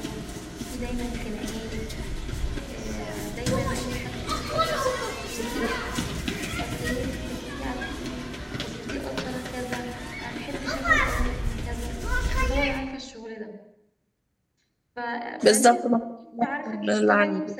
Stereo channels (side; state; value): both; identical; correlation 1.00